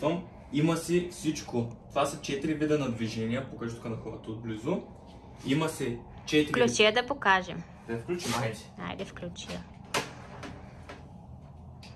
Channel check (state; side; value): identical; both; correlation 1.00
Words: Има си всичко. Това са 4 вида на движения. Покажи тук на хората отблизо. Има си 4... Включи я да покажем. Да я включим, айде. Айде, включи я.